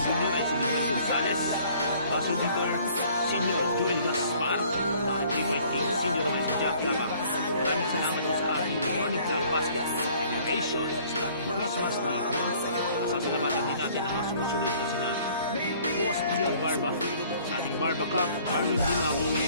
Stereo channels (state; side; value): inverted; both; correlation -0.56